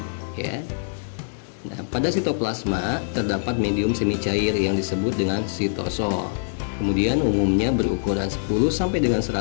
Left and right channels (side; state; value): right; silent; digital silence